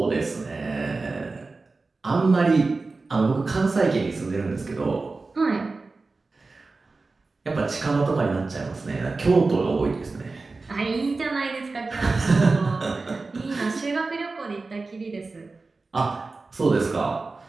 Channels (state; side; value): quieter; left; 3.7 dB